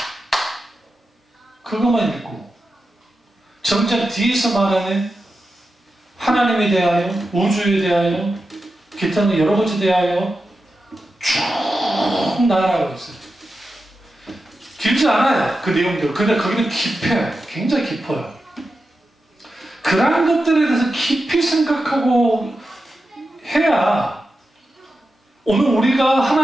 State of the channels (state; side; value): normal; both; correlation 0.90